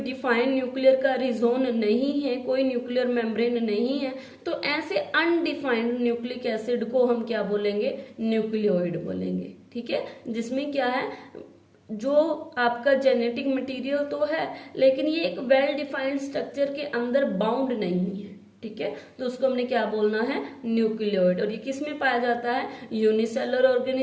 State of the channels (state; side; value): identical; both; correlation 1.00